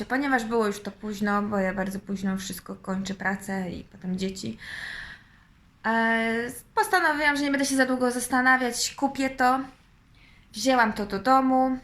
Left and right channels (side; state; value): both; identical; correlation 1.00